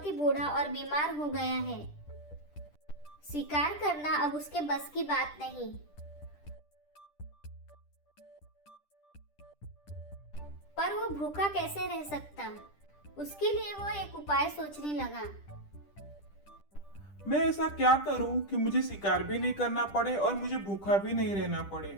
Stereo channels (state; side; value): late; right; 10 ms